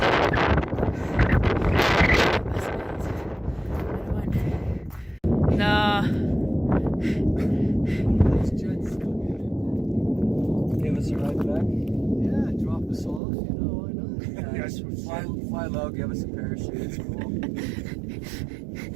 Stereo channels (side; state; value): left; drops out; at 13.2 s